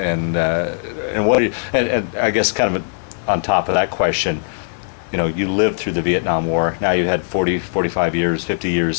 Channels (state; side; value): silent; right; 64 dB below the other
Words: what? And I guess kind of on top of that question, you lived through the Vietnam War. Now you had 40, 45 years, 50